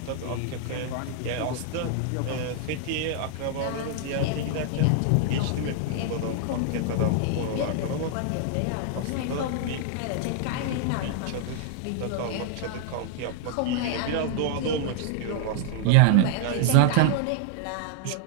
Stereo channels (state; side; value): different; both; correlation 0.00